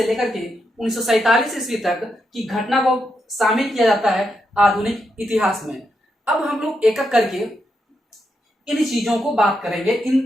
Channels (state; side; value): normal; both; correlation 0.83